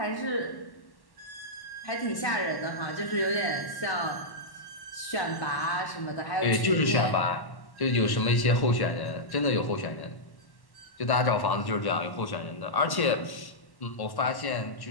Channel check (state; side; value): late; right; 1.1 ms